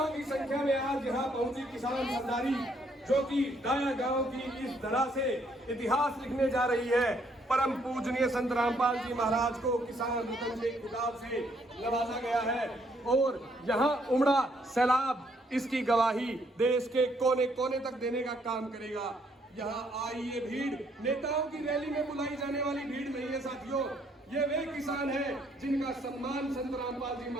की संख्या में आज यहाँ पहुंची किसान सरदारी, जो कि डाया गांव की इस धरा से इतिहास लिखने जा रही है। परम पूजनीय संत रामपाल जी महाराज को किसान रतन के खिताब से नवाजा गया है और यहाँ उमड़ा सैलाब इसकी गवाही देश के कोने कोने तक देने का काम करेगा। यहाँ आई ये भीड़ नेताओं की रैली में बुलाई जाने वाली भीड़ नहीं है साथियों, ये वे किसान हैं जिनका सम्मान संत रामपाल जी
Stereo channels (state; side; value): normal; both; correlation 0.69